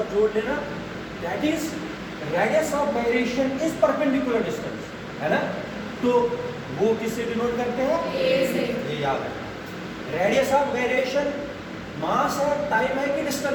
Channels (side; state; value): both; identical; correlation 1.00